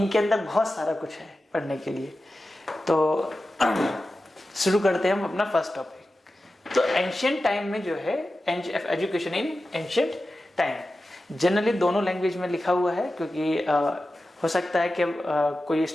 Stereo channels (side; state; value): both; normal; correlation 0.93